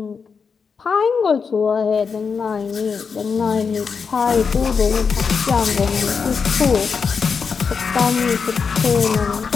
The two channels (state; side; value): quieter; right; 5.7 dB